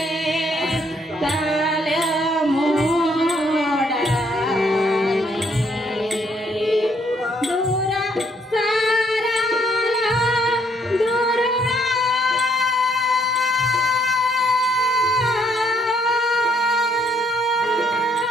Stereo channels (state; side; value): normal; both; correlation 0.69